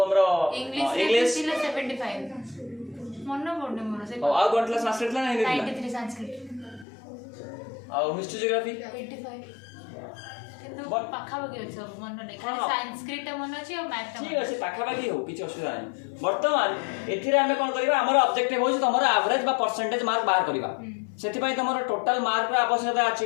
हमरो इंग्लिश थिला 75 मन पड़ने मोर से आउ कोन क्लास संस्कृत ला नहीं थिला 93 संस्कृत आउ हिस्ट्री ज्योग्राफी 85 किंतु But- पाखा बगे अछि मन नै खाली हाँ। संस्कृत मन अछि और मैथ ठीक अछि पाखापाखि हो किछि असुविधा नहीं वर्तमान एथिरे हमें कोन करबा हमर ऑब्जेक्टिव होछि तमरो एवरेज बा परसेंटेज मार्क बाहर करबा सेति पई तमरो टोटल मार्क रा आवश्यकता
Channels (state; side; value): drops out; right; at 6.9 s